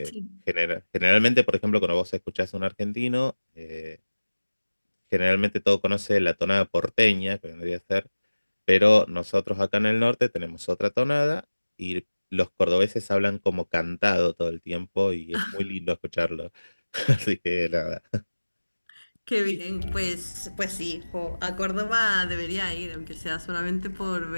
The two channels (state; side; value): inverted; both; correlation -1.00